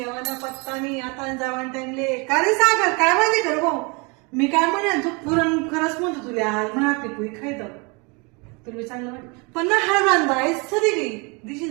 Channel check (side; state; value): left; quieter; 30.1 dB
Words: पत्ता नाही आता जावान टाइमले का रे सागर काय माहिती कर भाऊ मी काय म्हणे तू पुरण खरंच म्हणतो तुला आज म्हणा पिकू खायचं तुला चांगलं वाटत पण ना हा बांधा आहेस सरी गई